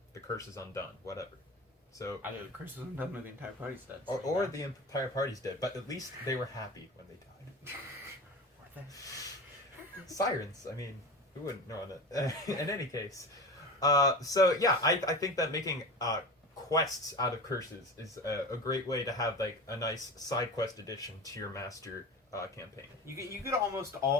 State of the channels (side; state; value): both; normal; correlation 0.31